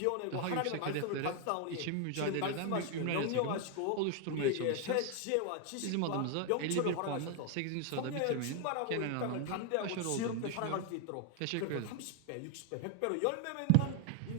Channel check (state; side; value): different; both; correlation 0.00